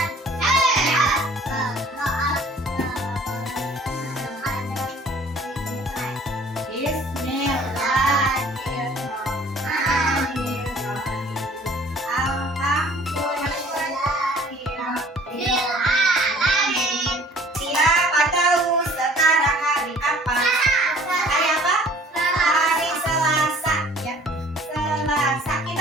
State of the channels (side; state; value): both; normal; correlation 0.52